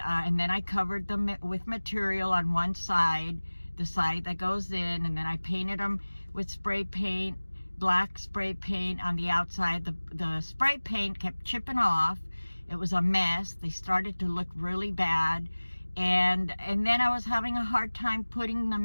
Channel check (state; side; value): inverted; both; correlation -1.00